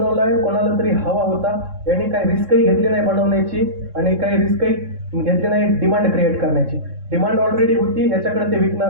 कोणाला तरी हवा होता, याने काही रिस्कही घेतली नाही बनवण्याची, आणि काही रिस्कही घेतली नाही डिमांड क्रिएट करण्याची. डिमांड ऑलरेडी होती, याच्याकडे ते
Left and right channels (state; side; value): late; left; 3.7 ms